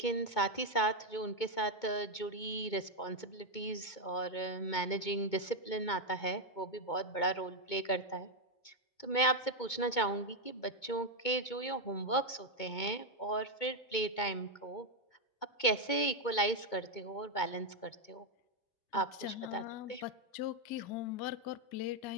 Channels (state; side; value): late; right; 2.2 ms